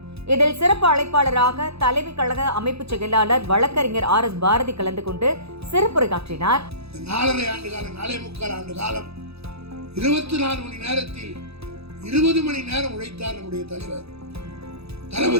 இதில் சிறப்பு அழைப்பாளராக தலைமை கழக அமைப்பு செயலாளர் வழக்கறிஞர் RS பாரதி கலந்து கொண்டு சிறப்புரையாற்றினார். 4.5 ஆண்டு காலம் 4.25 ஆண்டு காலம் 24 மணி நேரத்தில் 20 மணி நேரம் உழைத்தார் நம்முடைய தலைவர்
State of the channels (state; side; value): late; left; 0.78 ms